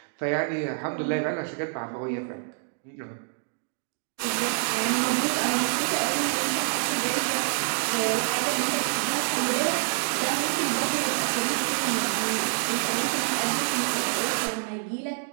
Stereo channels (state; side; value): silent; left; digital silence